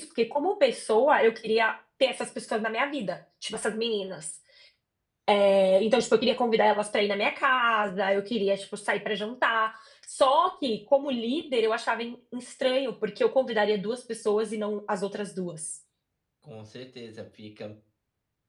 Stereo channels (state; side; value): identical; both; correlation 1.00